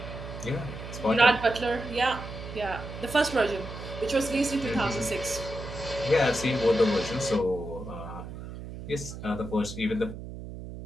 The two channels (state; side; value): noise; right; hum, 10 dB below the sound